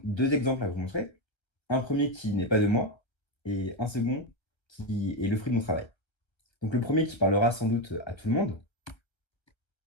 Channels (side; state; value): right; late; 1.3 ms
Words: deux exemples à vous montrer. Un premier qui n'est pas de moi et un second qui est le fruit de mon travail. Donc le premier qui parlera sans doute à tout le monde.